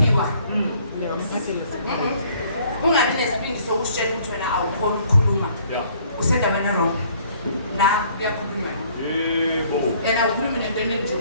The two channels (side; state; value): both; inverted; correlation -0.59